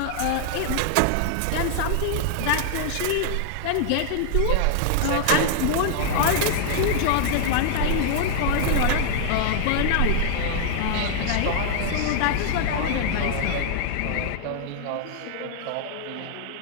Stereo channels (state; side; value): different; both; correlation -0.01